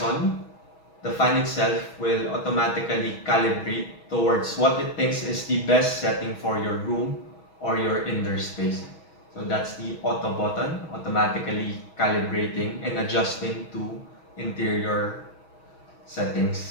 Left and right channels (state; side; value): late; right; 6.2 ms